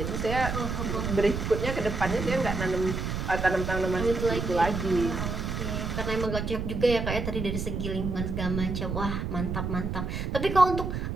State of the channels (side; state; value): right; noise; rumble, 3 dB below the sound